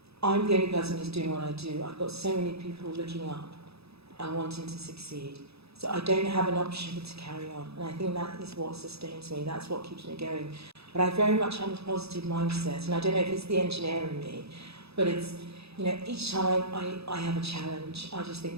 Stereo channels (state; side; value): late; left; 0.78 ms